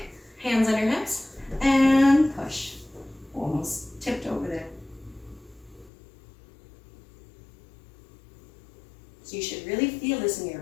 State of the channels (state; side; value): drops out; right; at 5.9 s